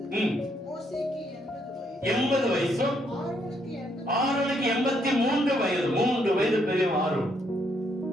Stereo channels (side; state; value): both; normal; correlation 0.73